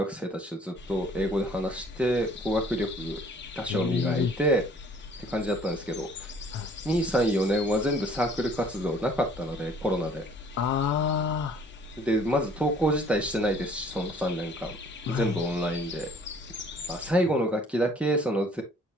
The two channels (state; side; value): normal; both; correlation 0.56